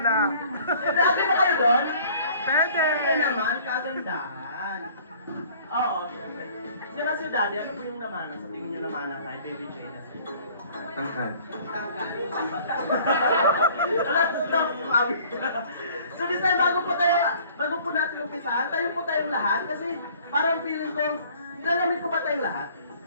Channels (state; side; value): inverted; both; correlation -0.53